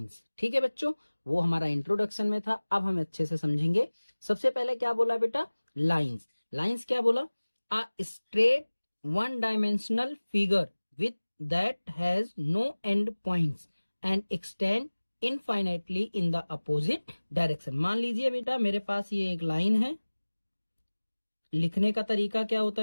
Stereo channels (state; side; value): inverted; both; correlation -1.00